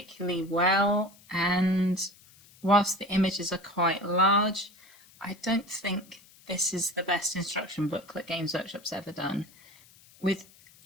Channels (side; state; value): left; noise; hiss, 26 dB below the sound